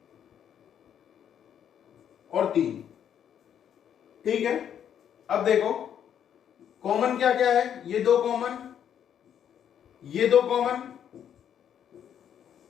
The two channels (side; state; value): right; quieter; 9.2 dB